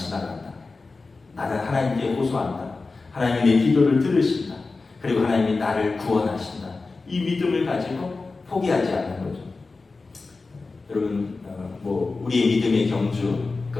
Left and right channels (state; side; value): quieter; right; 3.8 dB